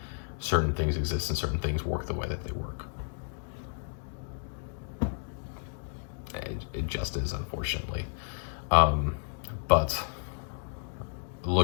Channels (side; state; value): right; silent; digital silence